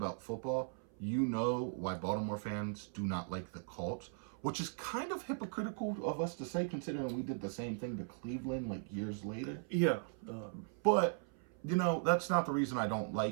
football, you know why Baltimore fans do not like the Colts, which is kind of hypocritical of us to say considering we did the same thing to Cleveland like years later. Yeah. But, you know, that's not the reason I don't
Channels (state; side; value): silent; left; 52 dB below the other